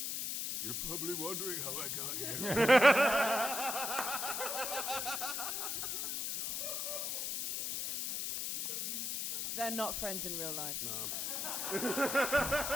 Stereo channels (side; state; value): left; noise; hiss, 2 dB below the sound